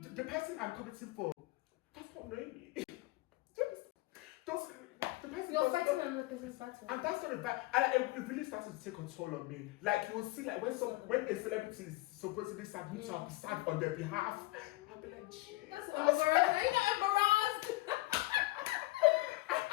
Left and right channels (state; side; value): quieter; right; 20.4 dB